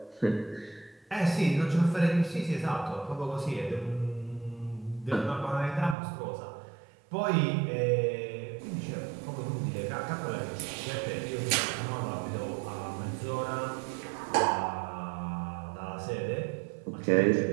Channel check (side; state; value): left; drops out; at 6.0 s